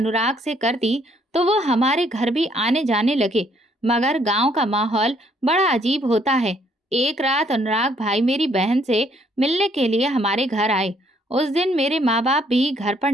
से कर दी तो वो हमारे घर भी आने जाने लगे। मगर गांव का माहौल बड़ा अजीब होता है। एक रात अनुराग भाई मेरी बहन से मिलने के लिए हमारे घर आए उस दिन मेरे माँ बाप भी घर पर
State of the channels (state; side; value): normal; both; correlation 0.67